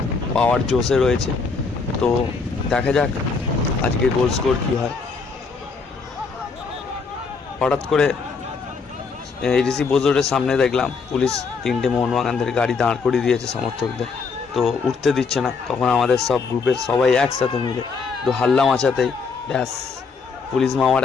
पावर जोशे रयेছে। तो देखा जाक आजके गोल स्कोर कि हय। हठात् करे एडिसि बोजोरेर सामने देखलाम पुलिस 3টে मोहनबागानদের गाड़ी दाঁড় करिয়ে दिएছে समर्थकদের। तो उठते दिच्छे ना। तखन आमादेर सब ग्रुपेर सबाई एकसाथे मिले तो हाल्ला माचातेई ब्यास पुलिस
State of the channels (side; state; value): right; quieter; 4.9 dB